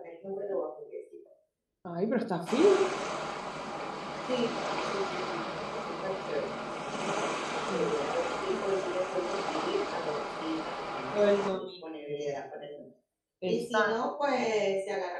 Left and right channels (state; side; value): identical; both; correlation 1.00